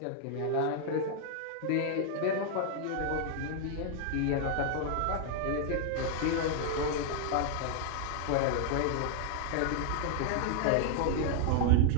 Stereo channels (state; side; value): different; both; correlation -0.01